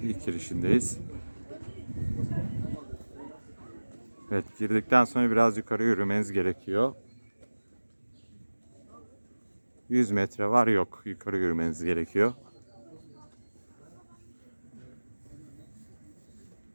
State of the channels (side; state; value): both; inverted; correlation -1.00